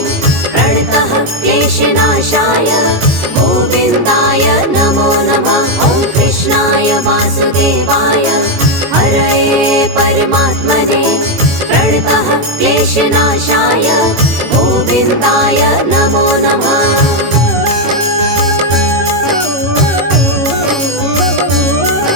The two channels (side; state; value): left; late; 18 ms